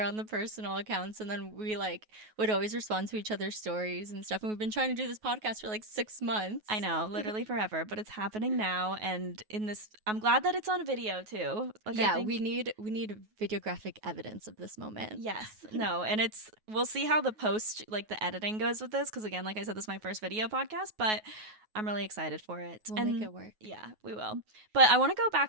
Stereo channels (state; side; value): late; left; 9.4 ms